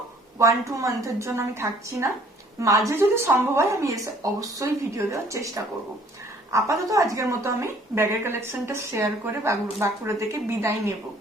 1-2 মান্থের জন্য আমি থাকছি না, মাঝে যদি সম্ভব হয় আমি এসে অবশ্যই ভিডিও দেওয়ার চেষ্টা করব। আপাতত আজকের মতো আমি ব্যাগের কালেকশনটা শেয়ার করে বাঁকুড়া থেকে বিদায় নেব।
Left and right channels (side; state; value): both; normal; correlation 0.57